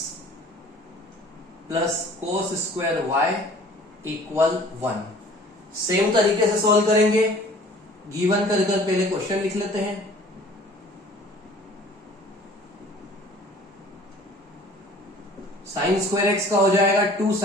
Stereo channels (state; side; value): normal; both; correlation 0.50